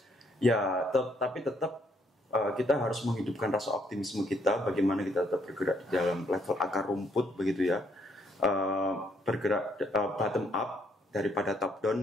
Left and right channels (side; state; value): both; normal; correlation 0.70